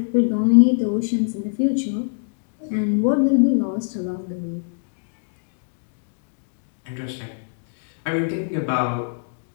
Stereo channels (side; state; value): right; silent; digital silence